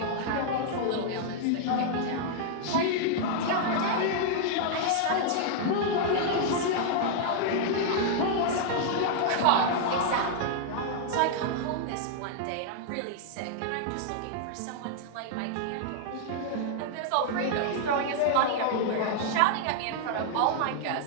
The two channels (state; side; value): different; both; correlation -0.01